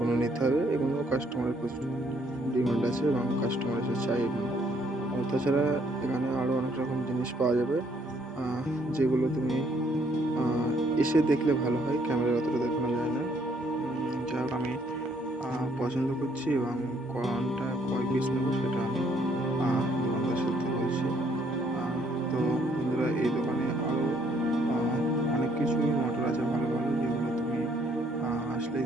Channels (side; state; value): both; normal; correlation 0.67